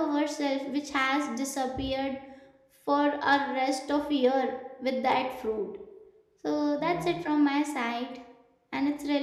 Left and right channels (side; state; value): both; identical; correlation 1.00